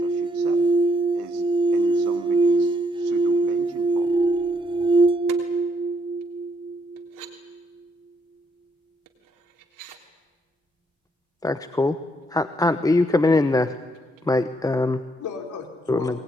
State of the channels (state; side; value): normal; both; correlation 0.73